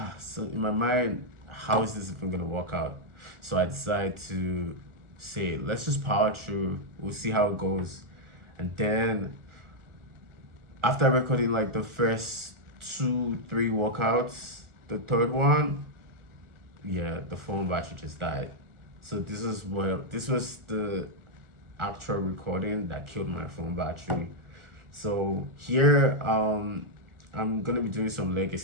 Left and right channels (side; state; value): left; late; 1.4 ms